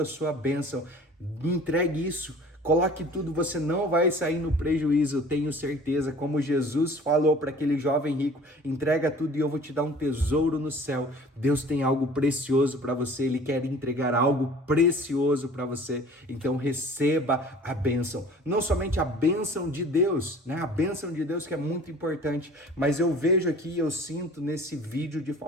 sua bênção, entregue isso. Coloque tudo, você não vai sair no prejuízo, eu tenho certeza. Como Jesus falou para aquele jovem rico: entrega tudo e eu vou te dar um tesouro no céu. Deus tem algo precioso para você, ele quer entregar algo precioso para você. Então receba a bênção, não somente a bênção de Deus, né? A bênção de Deus que é muito importante, mas eu vejo aqui, eu sinto nesse vídeo de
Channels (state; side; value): normal; both; correlation 0.47